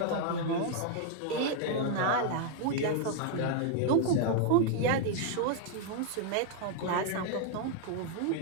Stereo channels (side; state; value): both; different; correlation 0.00